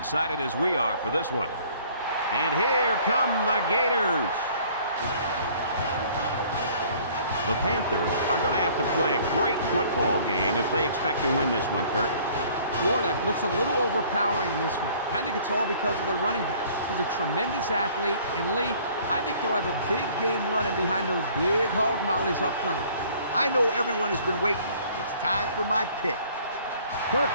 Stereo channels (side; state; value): both; inverted; correlation -0.55